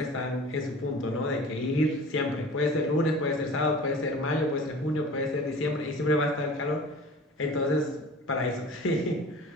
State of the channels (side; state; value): both; normal; correlation 0.41